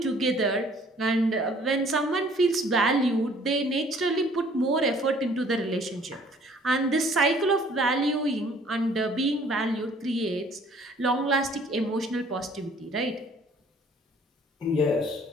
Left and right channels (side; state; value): both; normal; correlation 0.56